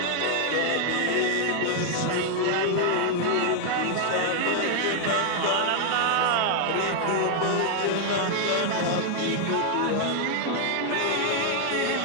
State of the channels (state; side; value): different; both; correlation 0.00